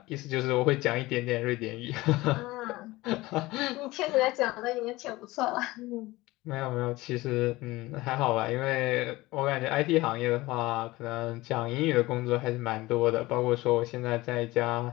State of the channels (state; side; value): quieter; right; 19.7 dB